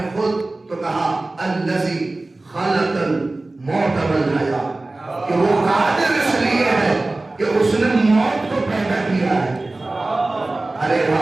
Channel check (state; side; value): quieter; left; 3.0 dB